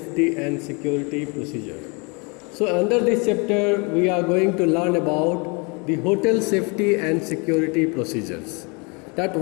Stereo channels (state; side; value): quieter; right; 31.3 dB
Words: and Security Procedure. So under this chapter we are going to learn about the hotel safety and security procedures. That